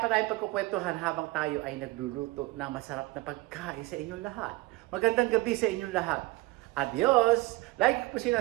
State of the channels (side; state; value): left; quieter; 21.1 dB